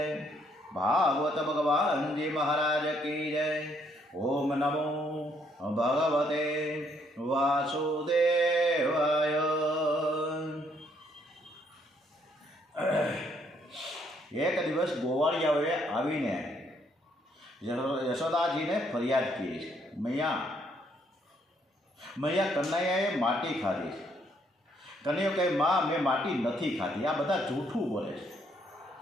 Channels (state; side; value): normal; both; correlation 0.70